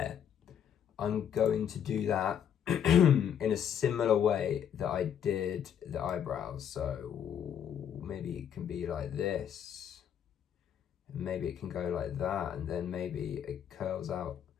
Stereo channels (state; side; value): quieter; right; 8.9 dB